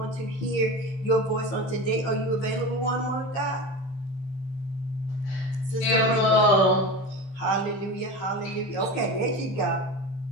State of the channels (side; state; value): right; late; 15 ms